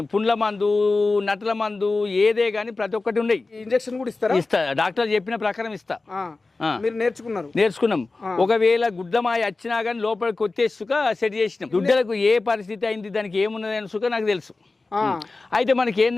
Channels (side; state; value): right; quieter; 3.5 dB